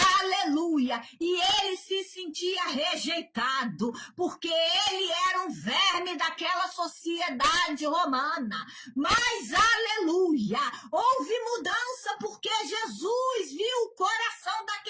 aleluia, e ele se sentia rejeitado, porque ele era um verme daquela sociedade romana, mas aleluia, houve mudança porque Jesus viu o coração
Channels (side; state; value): both; identical; correlation 1.00